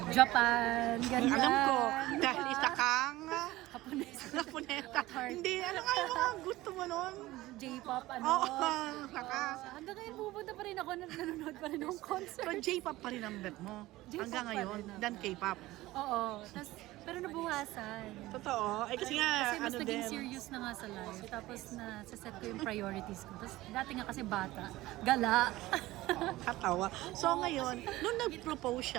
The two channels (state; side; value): quieter; left; 17.8 dB